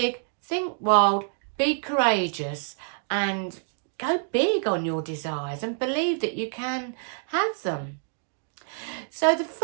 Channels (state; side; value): silent; left; digital silence